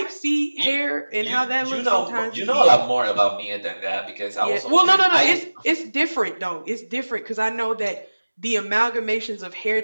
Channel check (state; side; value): inverted; both; correlation -1.00